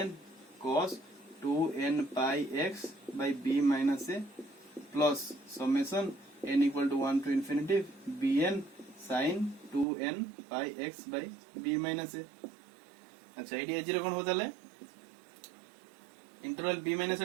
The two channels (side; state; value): left; drops out; at 9.9 s